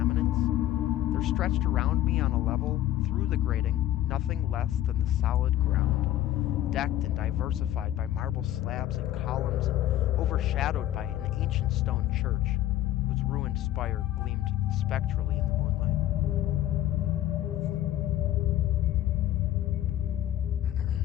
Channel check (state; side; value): quieter; right; 13.3 dB